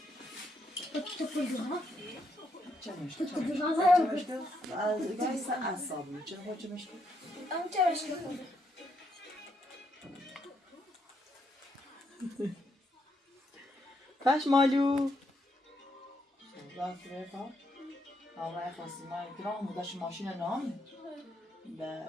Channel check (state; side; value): normal; both; correlation 0.77